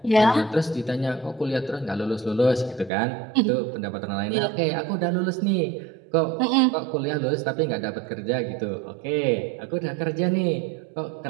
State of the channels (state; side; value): drops out; left; at 2.9 s